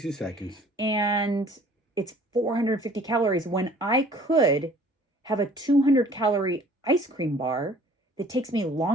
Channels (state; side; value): normal; both; correlation 0.53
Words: seconds. And it's 450 calories when I could have a 200 calorie ice cream bar that takes me